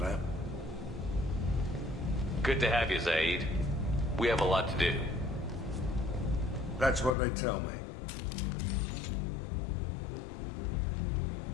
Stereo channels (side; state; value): right; drops out; at 7.2 s